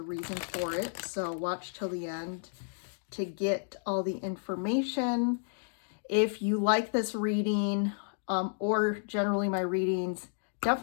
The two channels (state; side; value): silent; right; digital silence